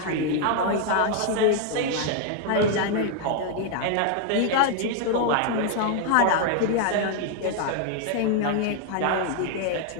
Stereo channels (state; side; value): different; both; correlation 0.00